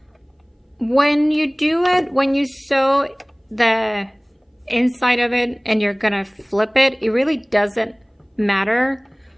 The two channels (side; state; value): both; identical; correlation 1.00